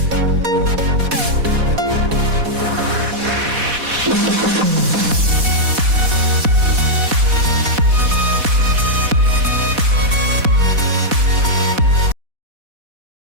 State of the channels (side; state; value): left; late; 4.1 ms